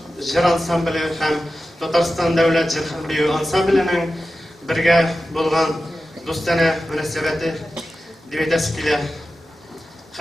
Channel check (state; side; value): normal; both; correlation 0.93